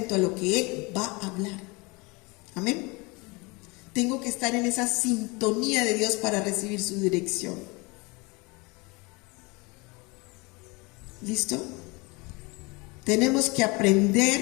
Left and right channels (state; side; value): quieter; right; 26.8 dB